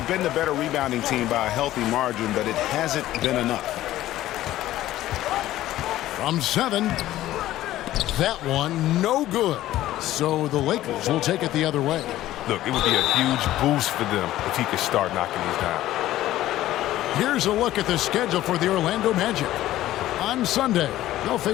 been the better rebounding team by a healthy margin, but it hasn't been enough. From 7. That one no good. So the Lakers will take it the other way. Look, it would be a huge boost for them if he could start knocking these down. Here's a look at the schedule for the Orlando Magic. On Sunday, they'll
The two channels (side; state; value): right; quieter; 14.5 dB